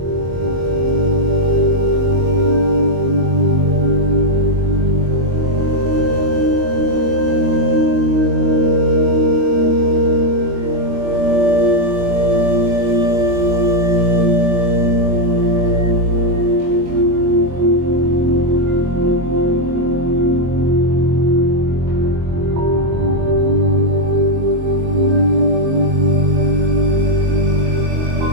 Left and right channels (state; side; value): late; left; 22 ms